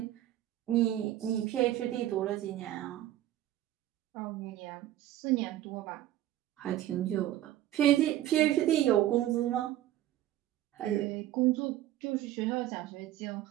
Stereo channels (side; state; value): left; quieter; 13.3 dB